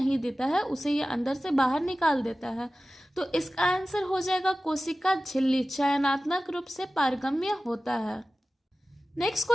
देता है, उसे ये अंदर से बाहर निकाल देता है। तो इसका आंसर हो जाएगा कोशिका झिल्ली चयनात्मक रूप से पारगम्य होता है। नेक्स्ट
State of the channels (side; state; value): both; normal; correlation 0.96